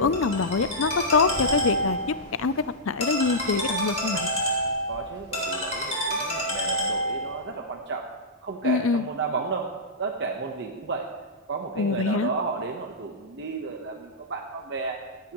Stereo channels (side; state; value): both; normal; correlation -0.13